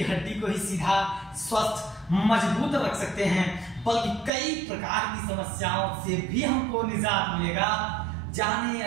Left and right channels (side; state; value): left; drops out; at 4.3 s